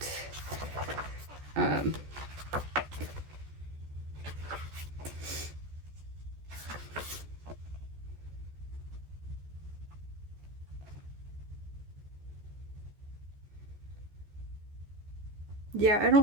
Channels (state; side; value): late; left; 14 ms